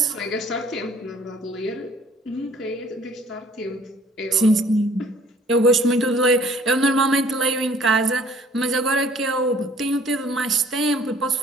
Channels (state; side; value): normal; both; correlation 0.56